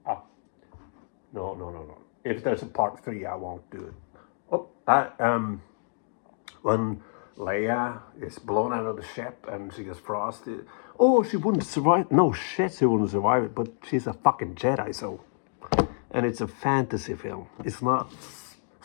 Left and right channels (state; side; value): silent; right; 59 dB below the other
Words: no. If there's a part 3, I won't do it. When Leia is blown out of the ship and she gets frosted. Oh, she wouldn't survive. No shit, she wouldn't survive it. But she's a fucking Jedi, so. And it's a fantasy film. It's not